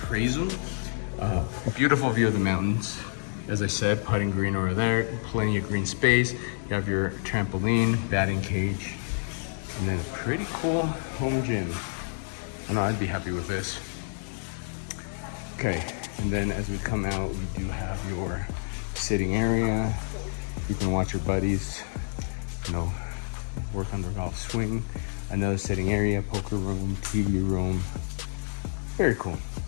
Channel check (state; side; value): silent; right; digital silence